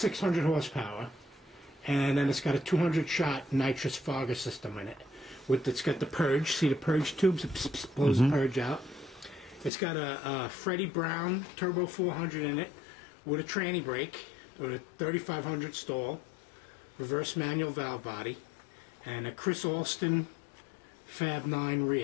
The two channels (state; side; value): drops out; right; at 9.7 s